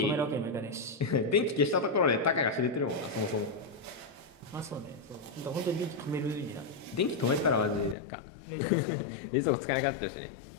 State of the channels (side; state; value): right; drops out; at 8.0 s